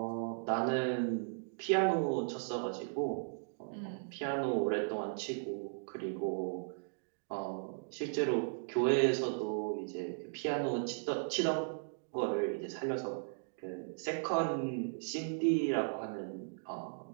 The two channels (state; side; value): silent; left; digital silence